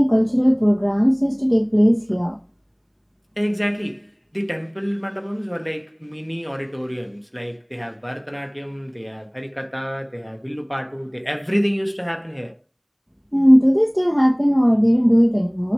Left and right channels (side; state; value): both; identical; correlation 1.00